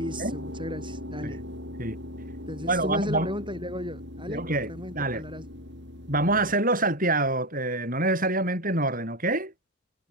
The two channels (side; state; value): both; normal; correlation 0.13